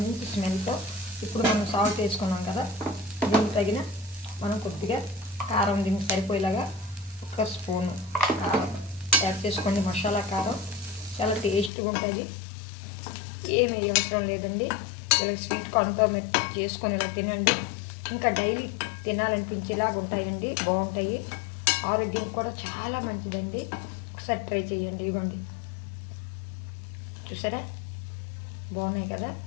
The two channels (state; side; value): drops out; right; at 11.7 s